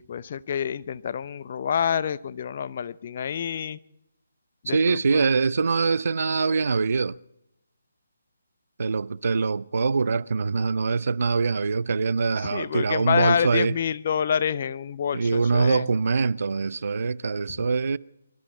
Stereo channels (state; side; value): inverted; both; correlation -0.83